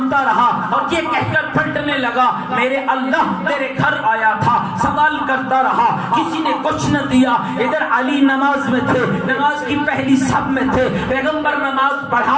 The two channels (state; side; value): identical; both; correlation 1.00